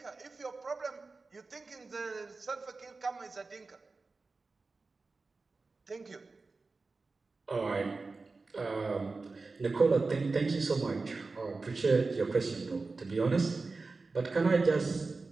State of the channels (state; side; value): quieter; left; 3.9 dB